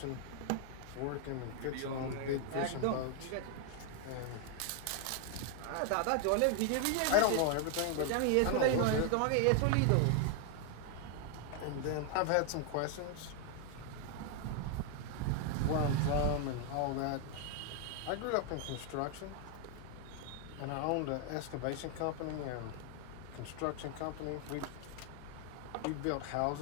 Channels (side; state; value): both; different; correlation 0.00